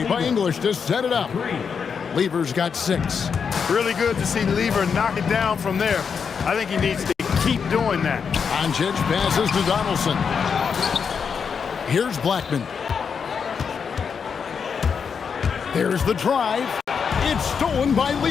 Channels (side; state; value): right; quieter; 6.3 dB